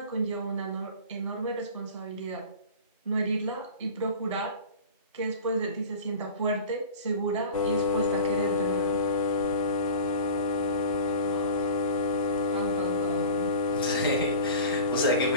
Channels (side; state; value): both; inverted; correlation -0.38